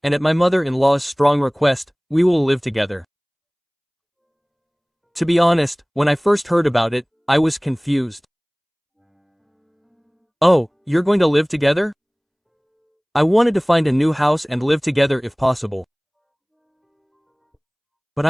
and at my mother-in-law's strong request, we will live together. To be honest, when I first heard about it, I was confused. Oh, you're going to live together? I wanted to find a new house and live together if possible. But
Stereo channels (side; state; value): both; identical; correlation 1.00